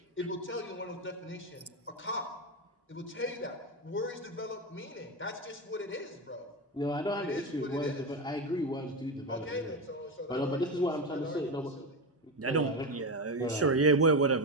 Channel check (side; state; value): both; normal; correlation 0.16